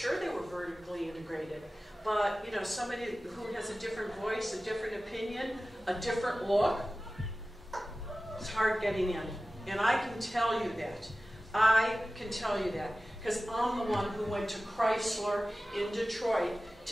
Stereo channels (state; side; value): normal; both; correlation 0.96